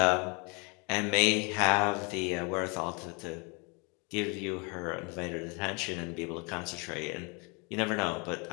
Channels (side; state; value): right; quieter; 31.8 dB